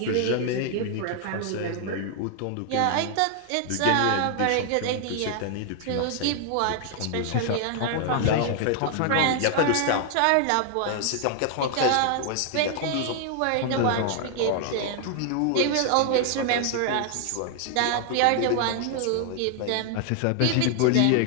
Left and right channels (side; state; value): both; different; correlation 0.00